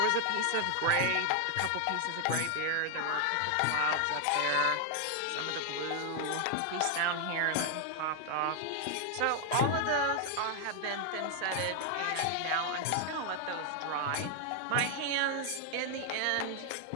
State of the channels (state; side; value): different; both; correlation 0.00